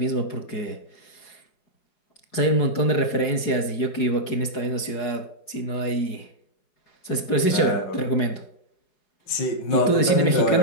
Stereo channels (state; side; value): late; right; 4.8 ms